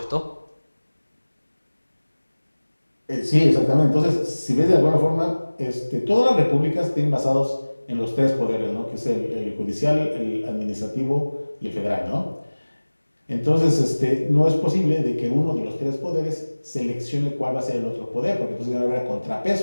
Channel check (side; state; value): both; inverted; correlation -1.00